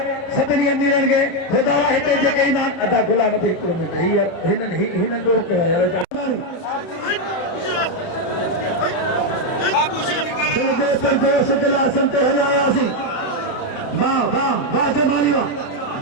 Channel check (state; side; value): late; right; 31 ms